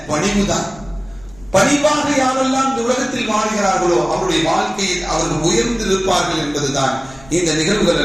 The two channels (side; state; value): left; noise; rumble, 23 dB below the sound